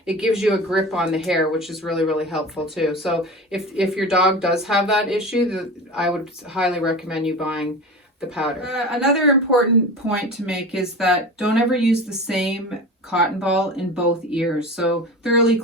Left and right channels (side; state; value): both; normal; correlation 0.31